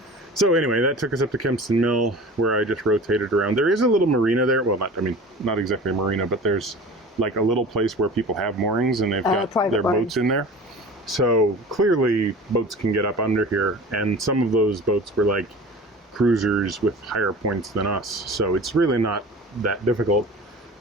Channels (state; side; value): normal; both; correlation 0.38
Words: So anyway, that took us up to Kempston Mill, where I just rotated around. There is a little marina there. Well, not exactly a marina, but there's like a little place where people have moorings and they've got their boats in there. So clearly boats can get up under here, and some of those boats were like cruisers with higher points than us. So it's really not that difficult.